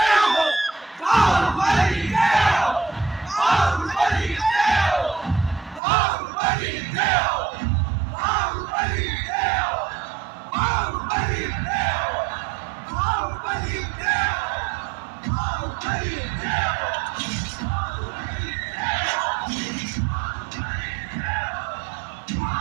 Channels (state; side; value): drops out; left; at 5.8 s